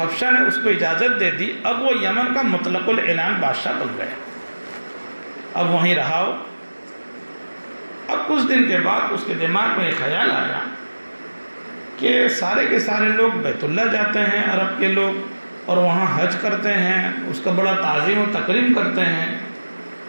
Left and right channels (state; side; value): inverted; both; correlation -1.00